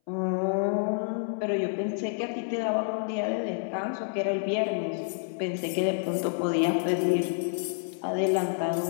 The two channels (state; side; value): silent; right; 59 dB below the other